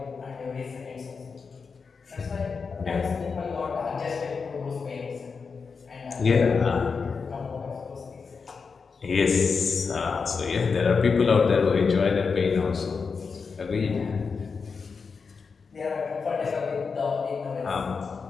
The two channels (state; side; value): quieter; right; 5.2 dB